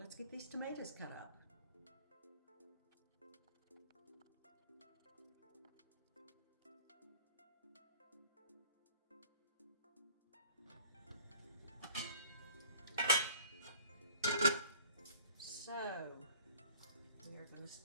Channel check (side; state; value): both; inverted; correlation -0.49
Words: get these tomatoes cut up. So, we are going to